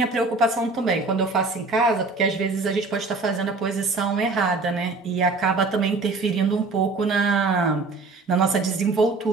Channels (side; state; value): left; quieter; 3.7 dB